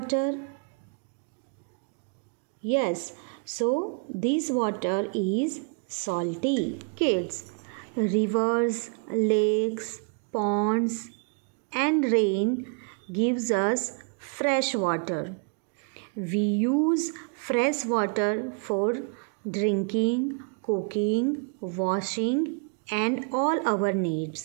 Yes, so this water is salty. Kids, rivers, lakes, ponds and rain gives us fresh water. We use fresh water for drinking, cooking, washing and all our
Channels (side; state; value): left; quieter; 38.1 dB